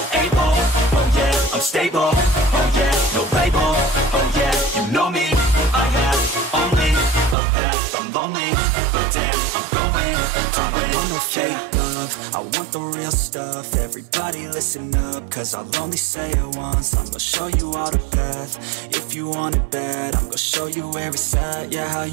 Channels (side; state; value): left; drops out; at 7.4 s